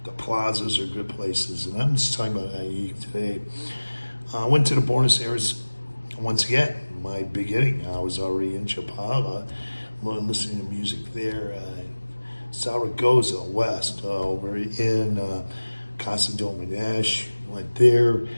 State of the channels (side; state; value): both; inverted; correlation -1.00